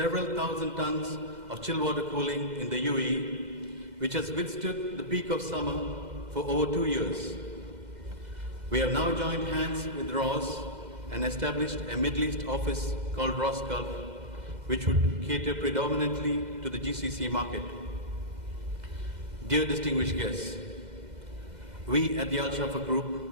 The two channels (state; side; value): late; left; 2.0 ms